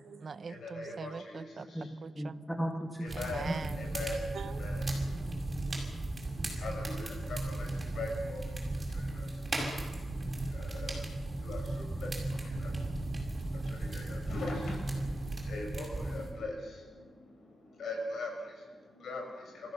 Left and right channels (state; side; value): normal; both; correlation 0.90